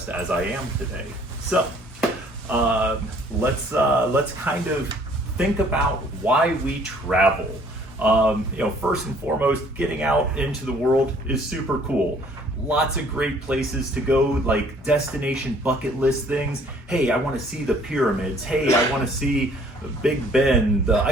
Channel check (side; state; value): both; normal; correlation 0.58